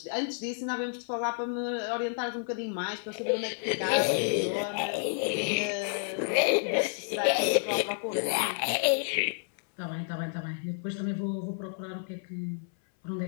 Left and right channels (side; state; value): right; silent; 58 dB below the other